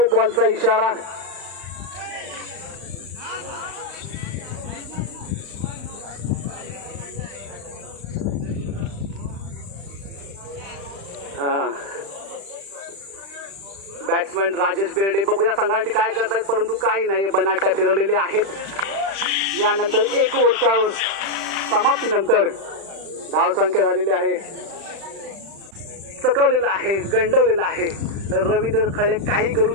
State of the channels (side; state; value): left; late; 35 ms